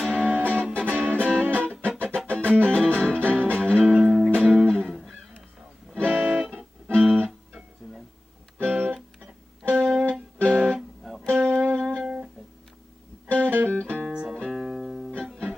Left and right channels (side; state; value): both; normal; correlation 0.97